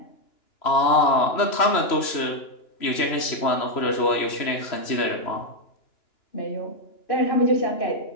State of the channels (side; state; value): right; late; 3.1 ms